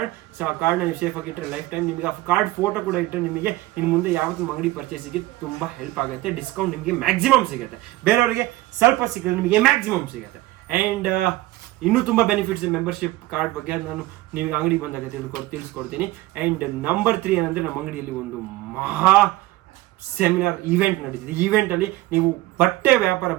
ಸೊ ಆ ಕಾರ್ಡ್ನ ನೀವು ಸೇಫ್ ಆಗಿ ಇಟ್ಟರೆ ಲೈಫ್ ಟೈಮ್ ನಿಮಗೆ ಆ ಕಾರ್ಡ್ ಫೋಟೋ ಕೂಡ ಇಟ್ಟರೆ ನಿಮಗೆ ಇನ್ನು ಮುಂದೆ ಯಾವತ್ತೂ ಅಂಗಡಿ ಪರ್ಚೇಸಿಗೆ ತುಂಬ ಹೆಲ್ಪ್ ಆಗುತ್ತೆ. ಡಿಸ್ಕೌಂಟ್ ನಿಮಗೆ ಮ್ಯಾಕ್ಸಿಮಮ್ ಸಿಗುತ್ತೆ, ಬೇರೆಯವರಿಗೆ ಸ್ವಲ್ಪ ಸಿಗುತ್ತೆ, ನಿಮಗೆ ಮ್ಯಾಕ್ಸಿಮಮ್ ಸಿಗುತ್ತೆ. ಆ್ಯಂಡ್ ಇನ್ನೂ ತುಂಬ ಬೆನಿಫಿಟ್ಸ್ ಮೆಂಬರ್ಶಿಪ್ ಕಾರ್ಡ್ ಬಗ್ಗೆ ನಾನು ನಿಮಗೆ ಅಂಗಡಿ ಬಂದಾಗ ತಿಳಿಸ್ಕೊಡ್ತೀನಿ. ಆ್ಯಂಡ್ ನಂಬರ್ 3 ಏನಂದರೆ, ನಮ್ಮ ಅಂಗಡಿಯಲ್ಲಿ ಒಂದು ಮಹಾ ಸೆಮಿನಾರ್ ಈವೆಂಟ್ ನಡೀತಿದೆ. ಈವೆಂಟಲ್ಲಿ ನೀವು ಬಟ್ಟೆ ವ್ಯಾಪಾರ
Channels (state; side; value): quieter; left; 18.1 dB